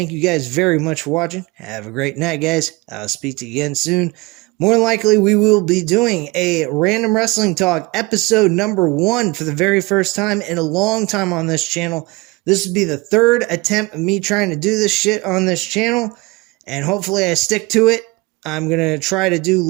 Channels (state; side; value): quieter; left; 23.7 dB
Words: you guys very much for watching. Have a great night, guys. I'll speak to you again soon. More than likely, we will be doing a Random Wrestling Talk episode number 1 for the very first time in a long time on this channel. This will be the 3rd attempt of me trying to do this shit on this channel, and hopefully I stick to it. I'm going to try to do